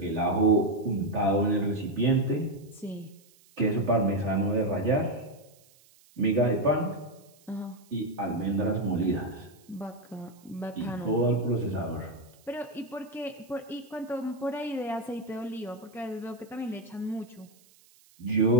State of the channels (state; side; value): noise; right; hiss, 29 dB below the sound